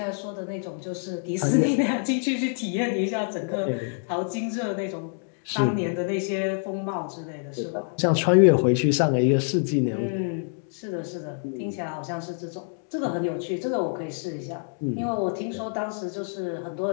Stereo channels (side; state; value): right; silent; 59 dB below the other